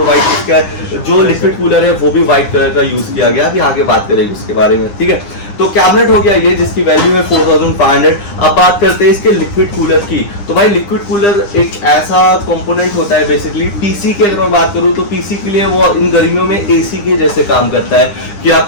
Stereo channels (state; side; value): late; right; 9.9 ms